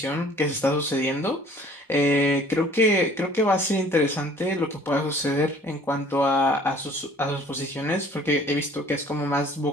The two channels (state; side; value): normal; both; correlation 0.53